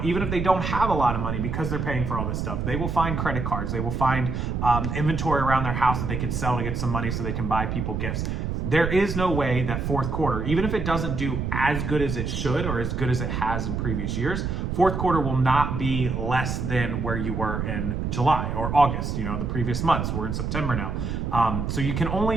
even if they don't have a lot of money because they're paying for all this stuff, they will find credit cards. They will find inventory around their house that they can sell to get some money so they can buy people gifts. There is no way that fourth quarter, even if it doesn't do as good as it should or as good as it has in previous years, fourth quarter will not be less than where you were in July or August, the previous months. We're in September now. So you can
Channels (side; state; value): right; noise; rumble, 2 dB below the sound